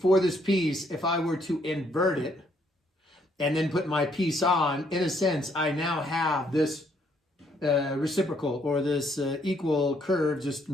this piece, if I were to invert it and then put my piece on, in a sense, I now have this reciprocal or this equal curve, just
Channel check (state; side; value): normal; both; correlation 0.69